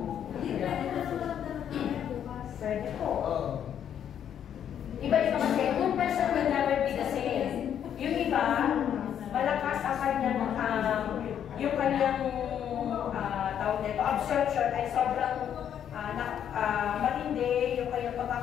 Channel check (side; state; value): right; quieter; 9.3 dB